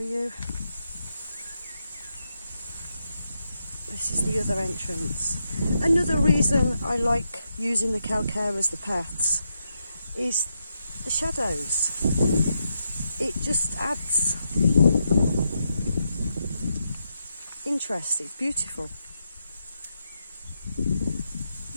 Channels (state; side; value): inverted; both; correlation -0.83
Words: This is the other entrance. Another reason I like using the calcare as the paths is the shadows. It just adds interest. It's beautiful.